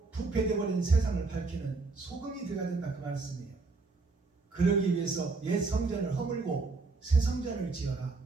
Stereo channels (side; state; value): left; quieter; 3.9 dB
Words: 부패되어버린 세상을 밝히는 소금이 되어야 된다 그 말씀이에요. 그러기 위해서 옛 성전을 허물고 새 성전을 지어라.